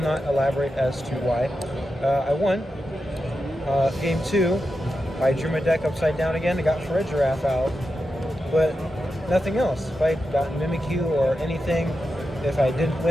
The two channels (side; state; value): both; normal; correlation 0.89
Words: elaborate as to why. I won. Game 2, I drew my deck upside down again. I got for a Giraffe out, but nothing else. If I got Mimikyu or anything, if I didn't